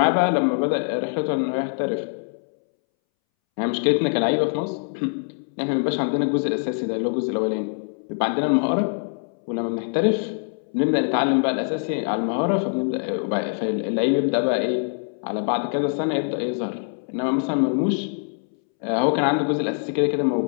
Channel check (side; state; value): right; silent; 63 dB below the other